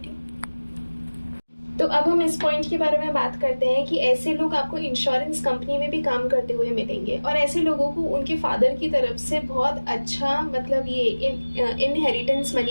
तो अब हम इस पॉइंट के बारे में बात करते हैं कि ऐसे लोग आपको इंश्योरेंस कंपनी में भी काम करते हुए मिलेंगे, और ऐसे लोगों को उनके फादर की तरफ से बहुत अच्छा मतलब ये इनहेरिटेंस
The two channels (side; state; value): both; inverted; correlation -1.00